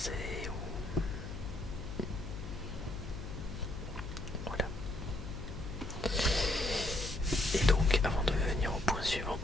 ou voilà. Et donc, avant de venir au point suivant,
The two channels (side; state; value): left; noise; hum, 8 dB below the sound